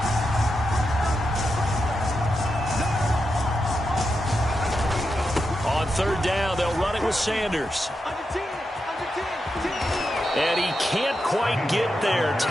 On 3rd down, they'll run it with Sanders. And he can't quite get there.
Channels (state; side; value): normal; both; correlation 0.87